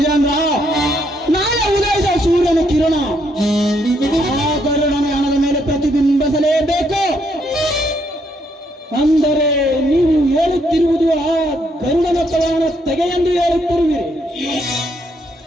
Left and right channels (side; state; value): both; normal; correlation 0.73